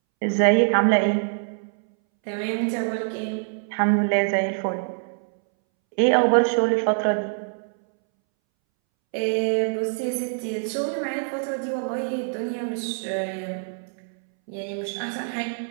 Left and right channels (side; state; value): left; silent; 62 dB below the other